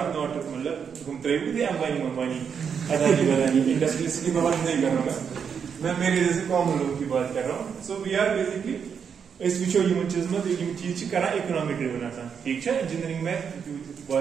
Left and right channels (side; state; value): left; quieter; 7.0 dB